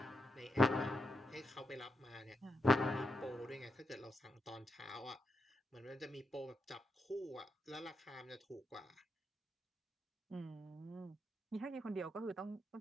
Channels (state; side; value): normal; both; correlation 0.83